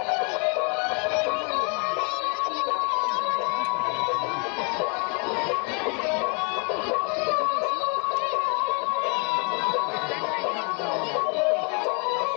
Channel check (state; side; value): quieter; right; 35.7 dB